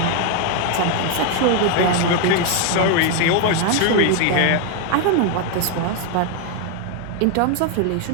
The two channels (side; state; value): both; different; correlation 0.01